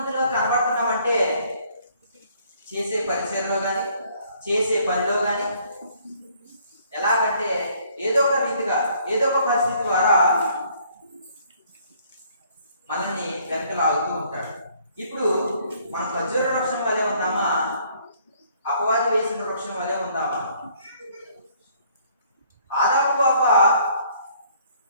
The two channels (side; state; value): both; inverted; correlation -0.62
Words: కనబడుతున్నామంటే చేసే పరిచయంలో కానీ, చేసే పనిలో కానీ, ఎలాగంటే ఏదో ఒక రీతిగా, ఏదో ఒక పరిస్థితి ద్వారా మనల్ని వెనక లాగుతూ ఉంటాడు. ఇప్పుడు మన ఖర్జూర వృక్షం వలె ఉందామా? అపవాది వేసిన వృక్షం వలె ఉందామా? ఆదాము అవ్వ